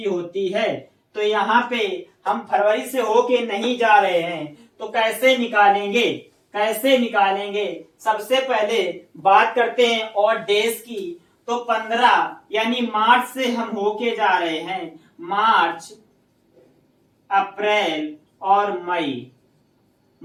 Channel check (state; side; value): identical; both; correlation 1.00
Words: होती है। तो यहाँ पे हम फरवरी से होके नहीं जा रहे हैं, तो कैसे निकालेंगे? सबसे पहले बात करते हैं और डेज की। तो 15 यानी मार्च से हम होके जा रहे हैं, मार्च, अप्रैल और